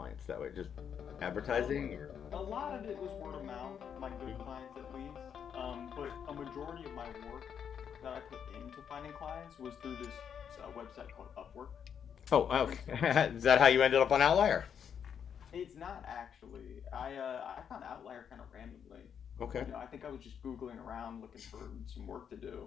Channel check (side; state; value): right; quieter; 7.9 dB